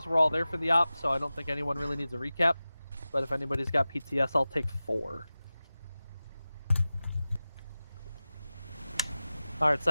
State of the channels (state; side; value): inverted; both; correlation -0.96